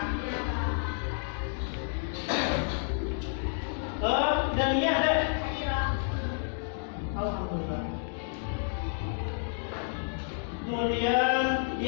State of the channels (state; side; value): silent; right; digital silence